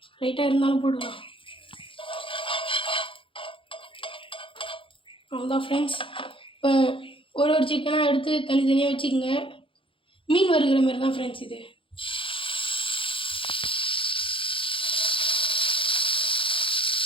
லைட்டாக இருந்தாலும் போடுவோம். அவ்வளோதான் ஃப்ரெண்ட்ஸ். இப்போ ஒரு சிக்கனாக எடுத்து தனித்தனியாக வச்சுக்கோங்க. மீன் வறுக்கிற மாதிரி தான் ஃப்ரெண்ட்ஸ் இது.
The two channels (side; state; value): right; late; 0.25 ms